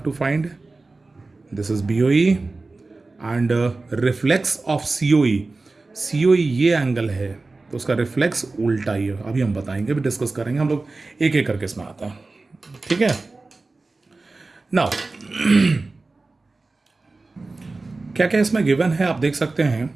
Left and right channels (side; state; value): left; quieter; 3.5 dB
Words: to find. This is BOE and reflex of COE. COE ये angle है तो उसका reflex उल्टा ही है. अभी हम बताएंगे, अभी डिस्कस करेंगे. हम लोग एक एक करके इसमें आते हैं. ठीक है. नाउ क्या क्या इसमें गिवन है आप देख सकते हैं.